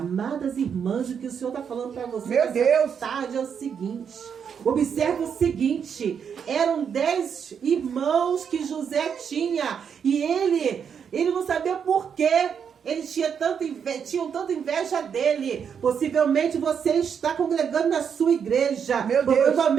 irmãs, o que o Senhor está falando para vocês meu Deus, tarde é o seguinte. Observe o seguinte. Eram 10 irmãos que José tinha. E ele não sabia por quê. Eles tinham tanta inveja dele. Possivelmente você está congregando na sua igreja. Meu Deus.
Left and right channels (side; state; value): left; quieter; 7.3 dB